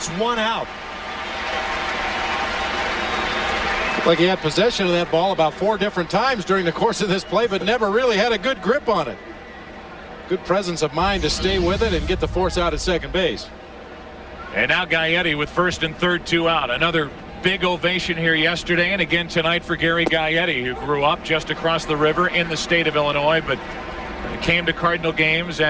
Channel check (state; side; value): identical; both; correlation 1.00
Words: one out. Looked like he had possession of that ball about 4 different times during the course of this play, but never really had a good grip on it. Good presence of mind to stay with it and get the force out at second base. And now Gaetti with first and third, 2 out. Another big ovation here yesterday and again tonight for Gary Gaetti, who grew up just across the river in the state of Illinois, but came to Cardinal games